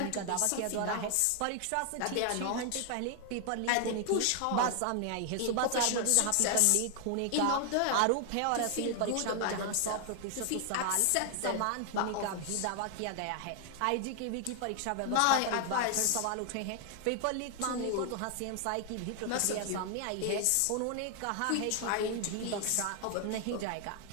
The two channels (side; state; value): both; different; correlation 0.00